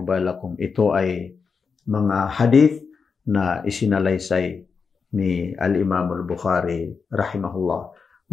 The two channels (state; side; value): quieter; right; 5.4 dB